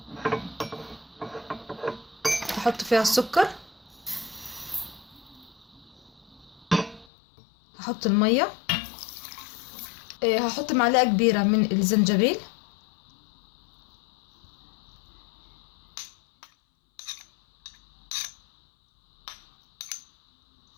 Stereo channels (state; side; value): drops out; right; at 7.1 s